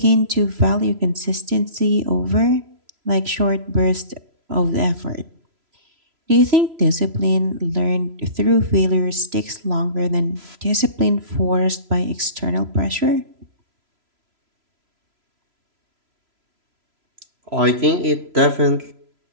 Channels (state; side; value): late; left; 3.0 ms